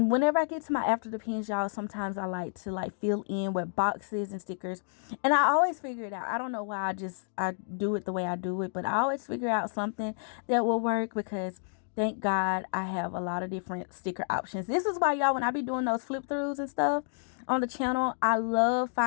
whenever I get to my after the pins, y'all, sometimes I like to like fill in with boxes and stickers. And I always figure it out. I don't know why I do it the way I do it, but I always figure out something that will work because thank God I have a lot of different sticker options. This is why, y'all, when I be doing those flip throughs and stuff on the channel, I love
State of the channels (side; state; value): right; silent; digital silence